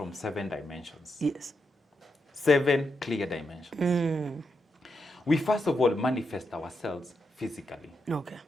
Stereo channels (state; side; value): normal; both; correlation 0.84